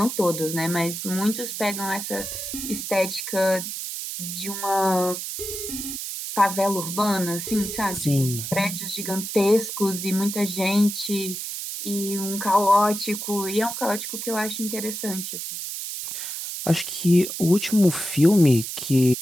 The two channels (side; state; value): right; noise; hiss, 6 dB below the sound